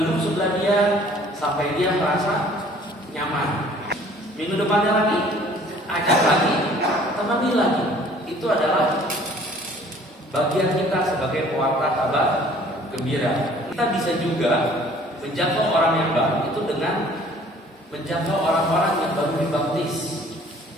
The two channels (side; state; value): both; normal; correlation 0.54